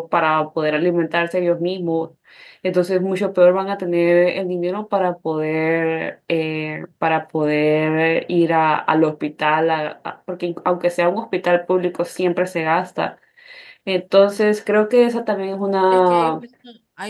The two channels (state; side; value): identical; both; correlation 1.00